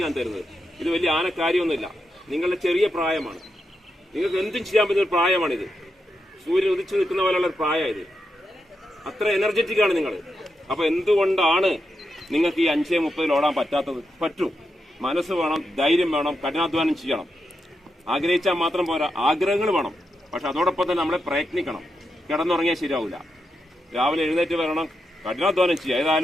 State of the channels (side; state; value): both; normal; correlation 0.86